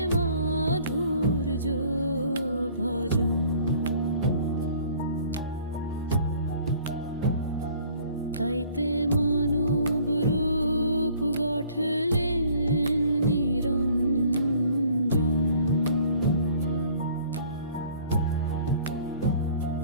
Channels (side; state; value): both; inverted; correlation -0.55